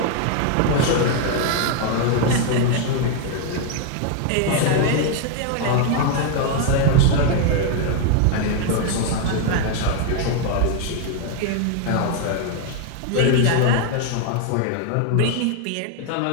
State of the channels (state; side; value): different; both; correlation 0.01